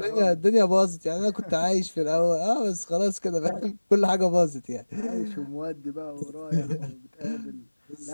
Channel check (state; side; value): inverted; both; correlation -1.00